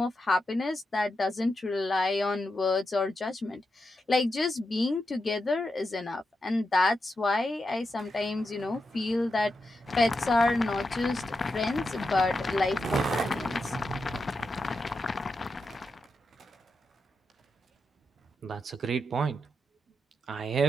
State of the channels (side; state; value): both; normal; correlation 0.87